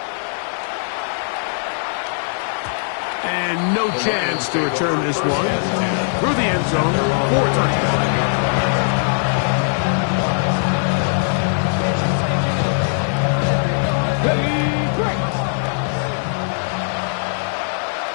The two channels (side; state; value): right; silent; 55 dB below the other